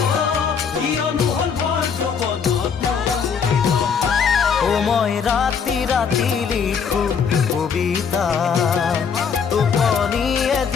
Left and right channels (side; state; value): right; quieter; 6.5 dB